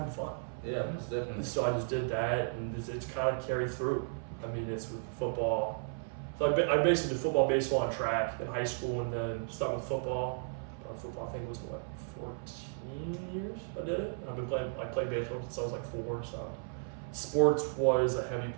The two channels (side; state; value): left; silent; 55 dB below the other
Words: fun. Yeah, that's definitely. So I just did that, and it's kind of carried through. I mean, it's with football. So I basically did football, baseball, and track in high school, and then started with football. Football, I think it was 14 years I did it. I've been playing. I played baseball since I was like 4. So sports was a heavy